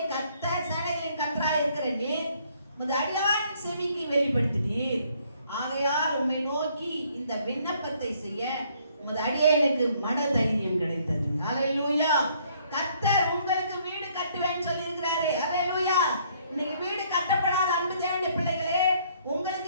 கர்த்தர் சேனைகளின் கர்த்தராய் இருக்கிற நீர் உமது அடியானின் செவிக்கு வெளிப்படுத்தினீர். ஆகையால் உம்மை நோக்கி இந்த விண்ணப்பத்தை செய்ய உமது அடியானுக்கு மனதைரியம் கிடைத்தது. ஹல்லேலூயா. கர்த்தர் உங்களுக்கு வீடு கட்டுவேன்னு சொல்லி இருக்கிறாரு. ஹல்லேலூயா. இன்னைக்கு வீடு கட்டப்படாத அன்பு தேவனுடைய பிள்ளைகளே,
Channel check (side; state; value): both; inverted; correlation -0.65